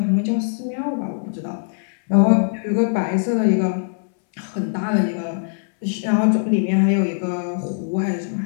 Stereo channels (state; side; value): silent; right; 65 dB below the other